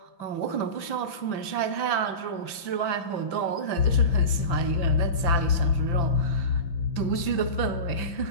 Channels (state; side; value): late; right; 5.9 ms